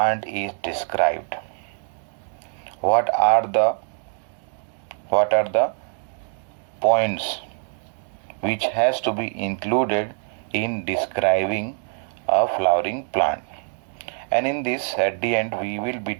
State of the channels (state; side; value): silent; left; 63 dB below the other